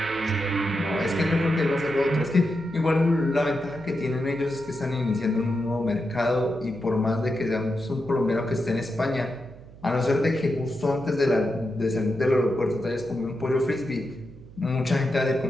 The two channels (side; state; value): right; noise; hum, 20 dB below the sound